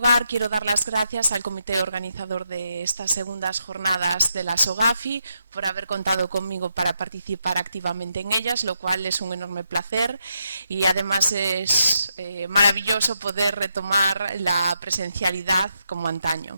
quiero dar las gracias al comité organizador de estas segundas jornadas de la SOGAFI por haber contado conmigo para participar activamente en ellas, lo cual es un enorme placer y además es maravilloso poder retomar la presencialidad como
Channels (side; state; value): both; inverted; correlation -0.81